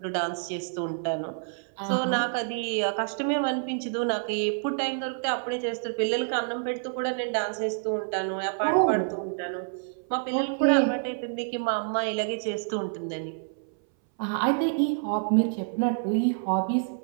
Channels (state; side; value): silent; left; 59 dB below the other